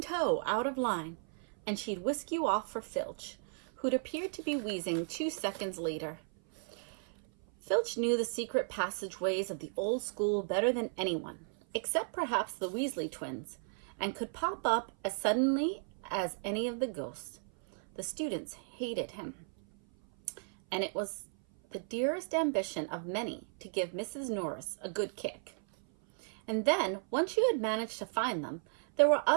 out of line, and she'd whisk you off for Filch, who'd appeared to be wheezing 2 seconds later. Filch knew the secret passageways of the old school better than anyone, except perhaps the Weasley twins, and could pop up as suddenly as any of the ghosts. The students hated him, and it was the dearest ambition of many to give Mrs. Norris a good kick. And then, once you had managed to find them, there were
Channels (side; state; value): left; silent; 55 dB below the other